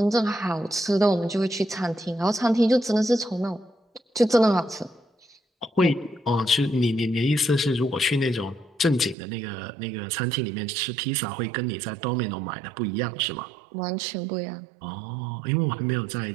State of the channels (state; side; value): drops out; left; at 9.2 s